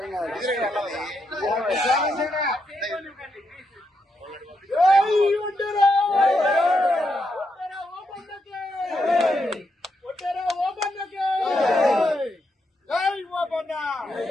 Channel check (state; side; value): normal; both; correlation 0.81